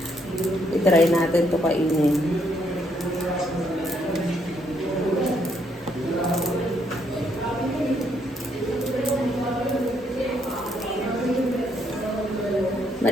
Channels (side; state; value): both; normal; correlation 0.73